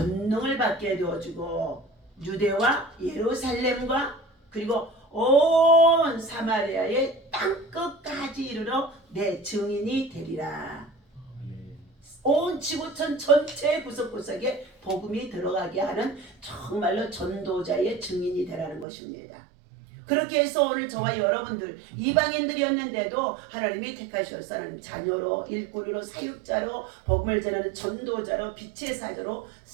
받게 되어주고 유대와 예루살렘과 그리고 온 사마리아의 땅끝까지 이르러 내 증인이 되리라. 온 지구촌 전체 구석구석에 복음이 들어가게 하는 정말로 전도자의 증인이 되라는 것입니다. 그렇게 해서 오늘 저와 여러분들 이방인들이었는데도 하나님이 택하셔서 하나님 자녀로 일꾼으로 사육자로 복음을 전하는 전도자로 빛의 사자로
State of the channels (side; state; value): left; drops out; at 18.9 s